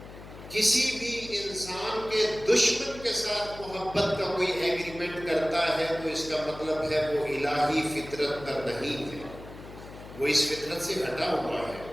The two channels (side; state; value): left; noise; hum, 15 dB below the sound